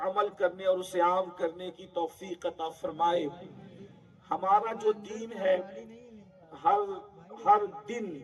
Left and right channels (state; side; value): identical; both; correlation 1.00